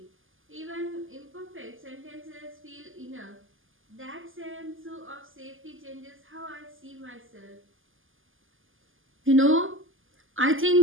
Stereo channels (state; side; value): late; left; 0.58 ms